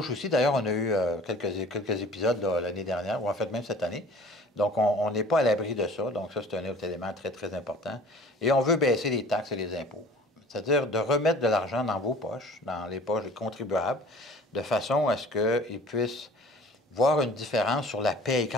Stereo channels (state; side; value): normal; both; correlation 0.47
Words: aussi. D'ailleurs, on a eu quelques épisodes l'année dernière, ou en fait même cette année. Donc, on n'est pas à l'abri de ça. Donc, ça, c'est un autre élément très, très important. Et on veut baisser les taxes et les impôts. C'est-à-dire de remettre de l'argent dans vos poches, dans les poches des contribuables, de façon à ce qu'ils puissent voir une différence sur la paye.